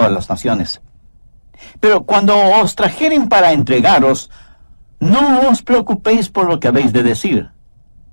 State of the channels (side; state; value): both; inverted; correlation -1.00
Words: las naciones. Pero cuando os trajeren para entregaros, No os preocupéis por lo que habéis de decir,